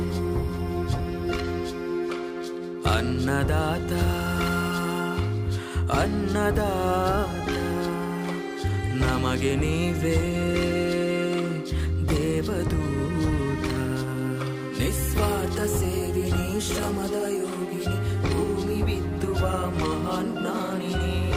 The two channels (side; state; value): both; identical; correlation 1.00